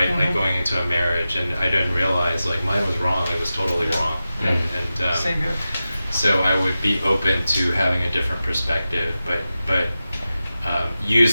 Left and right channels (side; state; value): both; inverted; correlation -0.93